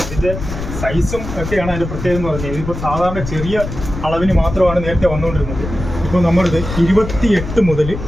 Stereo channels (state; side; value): noise; left; rumble, 8 dB below the sound